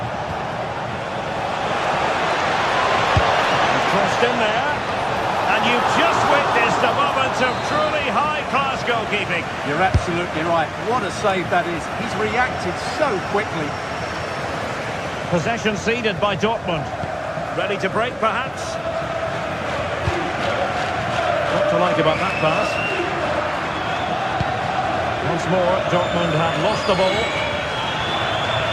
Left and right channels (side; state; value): both; identical; correlation 1.00